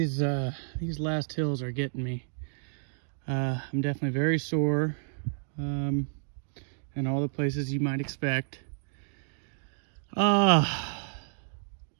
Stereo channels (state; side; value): silent; left; digital silence